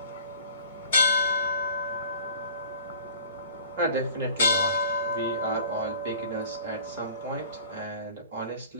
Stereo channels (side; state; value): both; inverted; correlation -0.46